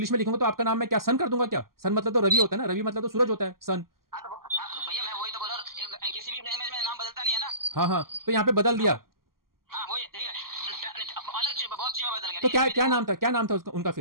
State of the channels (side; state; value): left; late; 0.92 ms